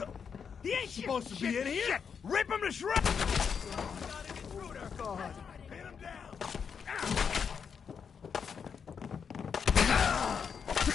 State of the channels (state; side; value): quieter; right; 6.6 dB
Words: He ain't supposed to be in here! Shit. Rip him to shreds! Got an intruder! God. Pin him down!